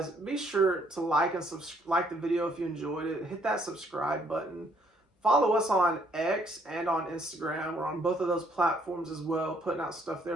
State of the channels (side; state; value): both; normal; correlation 0.67